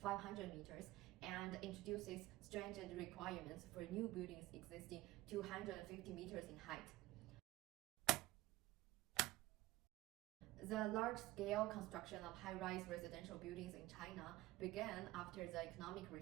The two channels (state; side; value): quieter; left; 17.8 dB